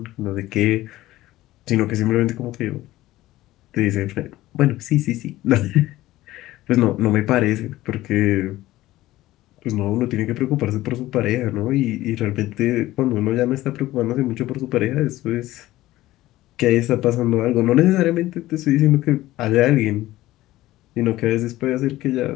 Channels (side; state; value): right; quieter; 16.3 dB